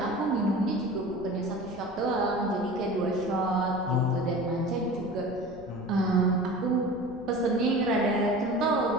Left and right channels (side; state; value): left; noise; rumble, 20 dB below the sound